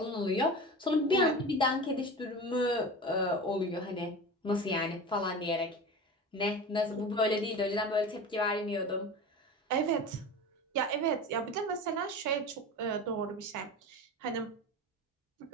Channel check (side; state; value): both; normal; correlation 0.31